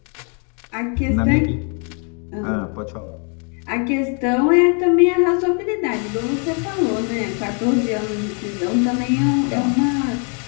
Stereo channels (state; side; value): quieter; right; 38.5 dB